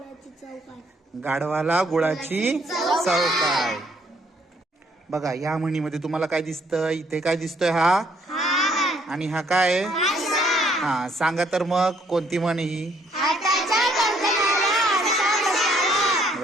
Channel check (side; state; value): both; normal; correlation 0.66